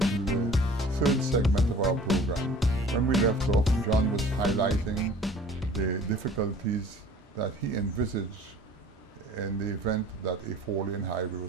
the third segment of our program. When we left off, John was highlighting the difficulties that he envisaged in the event that a four-lane highway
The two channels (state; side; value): normal; both; correlation 0.48